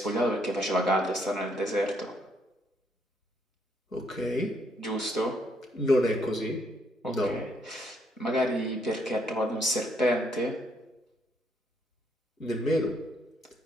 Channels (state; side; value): normal; both; correlation 0.71